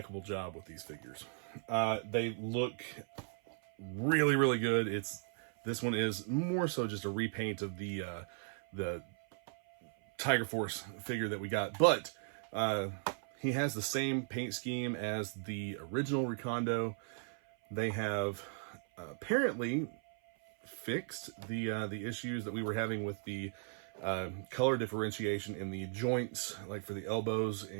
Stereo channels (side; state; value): left; silent; 53 dB below the other